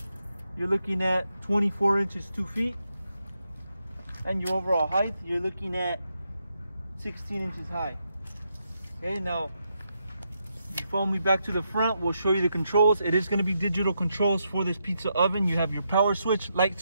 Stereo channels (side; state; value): both; inverted; correlation -0.82